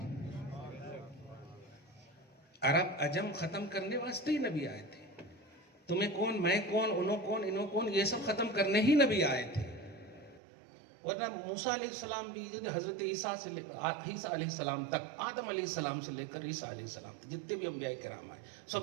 عرب عجم ختم کرنے واسطے ہی نبی آئے تھے۔ تمہیں کون، میں کون، انہوں کون، انہوں کون، یہ سب ختم کرنے ہی نبی آئے تھے۔ ورنہ موسیٰ علیہ السلام بھی، حضرت عیسیٰ علیہ السلام تک، آدم علیہ السلام سے لے کر عیسیٰ علیہ السلام تک جتنے بھی انبیاء کرام آئے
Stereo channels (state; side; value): drops out; left; at 10.4 s